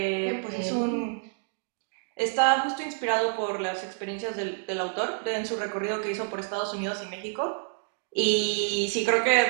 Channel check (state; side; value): silent; left; digital silence